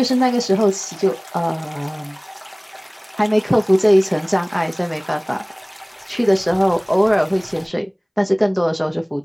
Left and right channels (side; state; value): both; identical; correlation 1.00